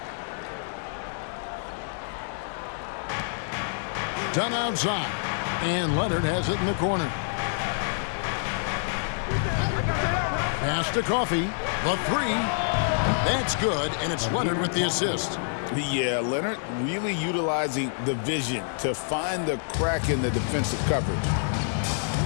Dunn outside. And Leonard has it in the corner. Pass to Coffey. The three. That's good, and it's Leonard with the assist. Yeah, Leonard really utilizing the vision to find the crack in the defensive coverage.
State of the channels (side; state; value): right; silent; digital silence